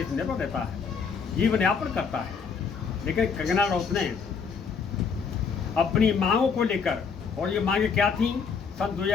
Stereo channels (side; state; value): right; quieter; 5.8 dB